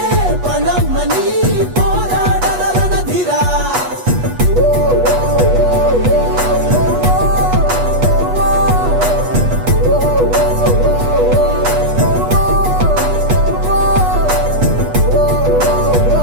పణమ్మని పోరాడర రణధీరా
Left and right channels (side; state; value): left; late; 8.2 ms